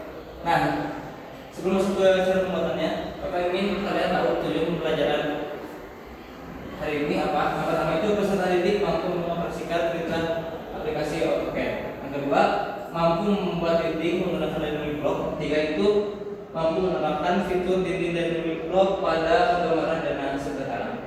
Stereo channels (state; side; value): identical; both; correlation 1.00